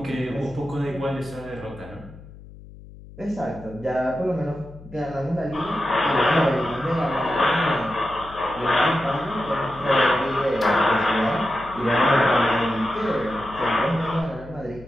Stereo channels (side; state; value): left; noise; hum, 18 dB below the sound